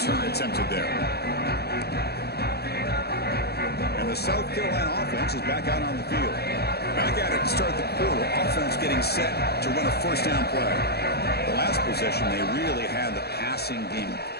attempted there. And the South Carolina offense is back out on the field. Back at it to start the quarter. Offense getting set to run a first down play. The last possession, they really had the passing game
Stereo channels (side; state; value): right; late; 0.47 ms